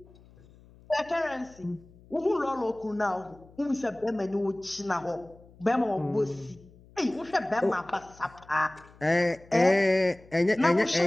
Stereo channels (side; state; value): left; noise; hum, 25 dB below the sound